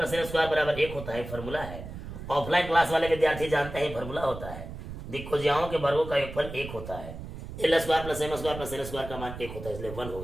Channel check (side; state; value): right; noise; rumble, 10 dB below the sound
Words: N square बराबर 1 होता है, फॉर्मूला है। ऑफलाइन क्लास वाले विद्यार्थी जानते हैं फॉर्मूला होता है। दिक् को ज्याओं के वर्गों का योगफल 1 होता है। L square plus M square plus N square का मान 1 होता है, इसलिए 1